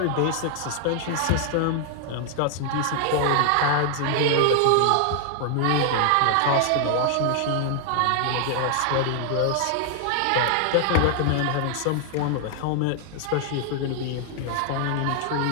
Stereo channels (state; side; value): different; both; correlation 0.00